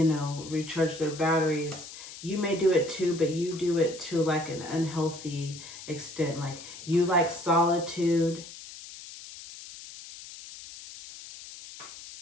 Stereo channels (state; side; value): noise; left; hiss, 14 dB below the sound